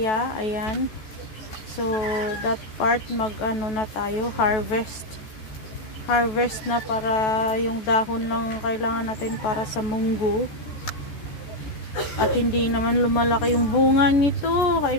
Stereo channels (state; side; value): late; right; 14 ms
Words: Ayan. So that part mag-ano na tayo, harvest na, para yung dahon lang kailangan natin para sa munggo. At hindi naman lumalaki yung bunga nito.